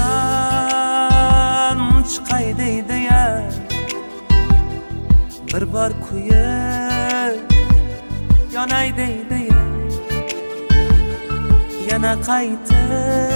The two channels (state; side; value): inverted; both; correlation -1.00